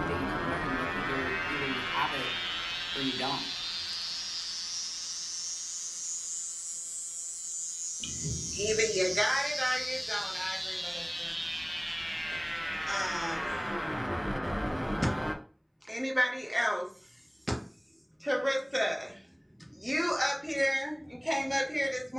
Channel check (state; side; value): identical; both; correlation 1.00